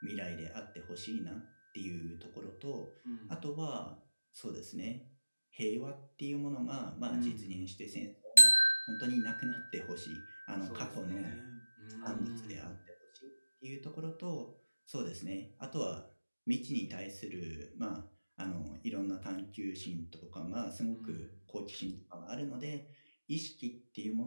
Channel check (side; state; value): both; inverted; correlation -1.00